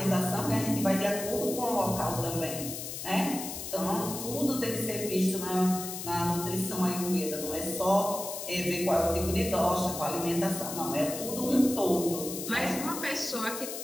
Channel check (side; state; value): left; noise; hiss, 7 dB below the sound